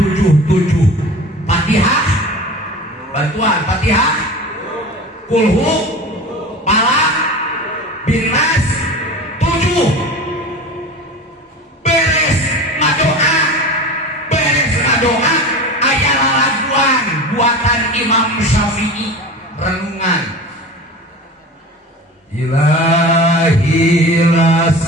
Fatihah bantuan Fatihah kulhu palak binnas 7 beres ngadoa aya lalaguan buatan Imam Syafi'i renungan Ilahi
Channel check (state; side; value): normal; both; correlation 0.34